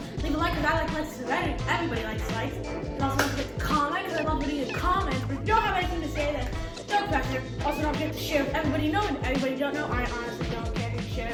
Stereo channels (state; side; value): identical; both; correlation 1.00